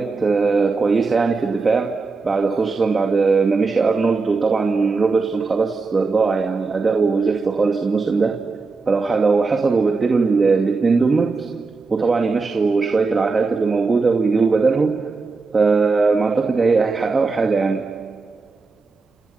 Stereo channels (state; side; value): quieter; left; 4.2 dB